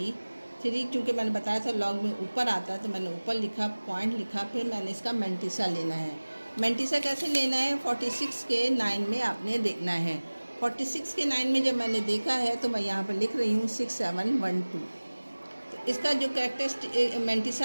क्योंकि मैंने बताया था लॉग में ऊपर आता है तो मैंने ऊपर लिखा, पॉइंट लिखा, फिर मैंने इसका मैंटिसा लेना है। मैंटिसा कैसे लेना है, 46 के 9 में आपने देखना है। 46 के 9 में जब मैंने देखा है तो मैं यहाँ पर लिख रही हूँ 6712। तो इसका जो कैरेक्टरिस्टिक मैंटिसा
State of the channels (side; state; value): both; inverted; correlation -1.00